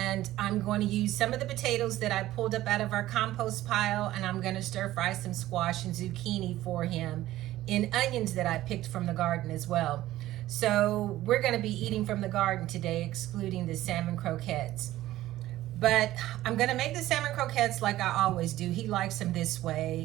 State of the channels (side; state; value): left; quieter; 15.1 dB